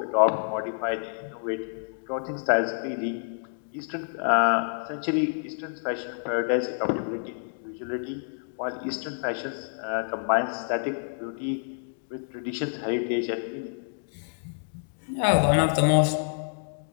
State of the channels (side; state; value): right; silent; digital silence